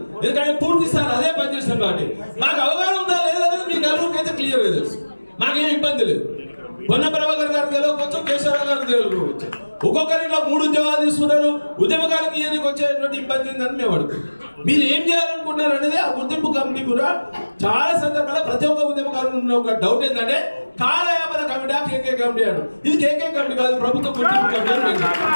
ఎందుకంటే పూర్తి స్థాయి అదే పనిచేస్తాం కాబట్టి మాకు అవగాహన ఉందా లేదనేది మీ నలుగురికి అయితే క్లియర్గా తెలుసు. మాకేం ఇబ్బంది లేదు. పొన్న ప్రభాకర్ గారు గెలవవచ్చు, కేశవరావు గారు గెలవచ్చు. ఒక్కొక్కరిలో 3 ఉద్యోగాలు తీసుకున్నారు. ఉద్యమకాలకు ఇయనికి వచ్చేటువంటి ఇబ్బంది ఉందని మేము అడుగుతాం. మీరు ఏం చేయాలనుకుంటున్నారు అనేది ఆ గుర్తింపు కమిటీ కూడా చాలా సందర్భాల్లో ప్రతి ఒక్క ఉద్యమకారులు ఉన్న ఒక డౌట్ ఏంటంటే కాలయాపన కమిటీ కేకే కమిటీ అను. ఇది కేకే కమిటీ కాదు, ప్రభుత్వ గుర్తింపు కమిటీ.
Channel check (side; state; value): both; inverted; correlation -1.00